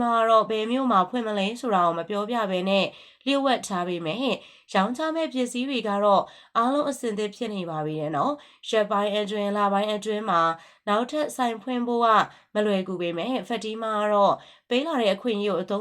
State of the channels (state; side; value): identical; both; correlation 1.00